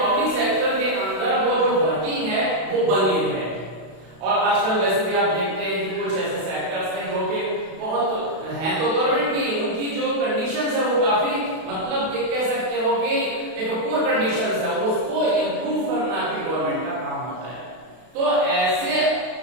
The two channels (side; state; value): left; late; 32 ms